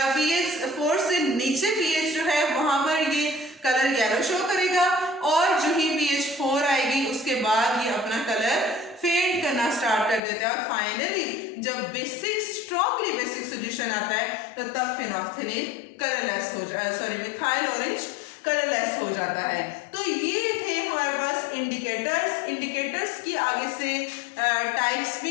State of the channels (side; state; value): right; drops out; at 10.2 s